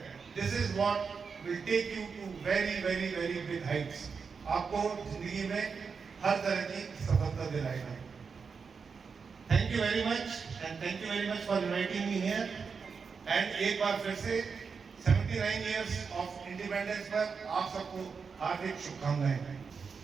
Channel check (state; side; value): quieter; left; 5.5 dB